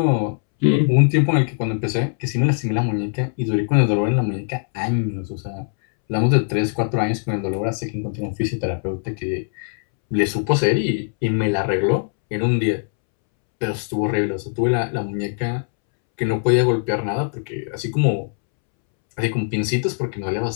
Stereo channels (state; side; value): silent; right; 65 dB below the other